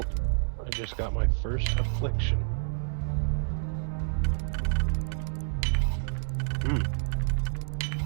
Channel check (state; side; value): silent; left; digital silence